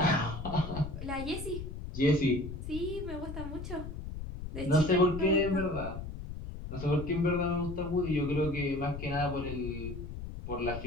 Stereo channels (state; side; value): noise; left; rumble, 8 dB below the sound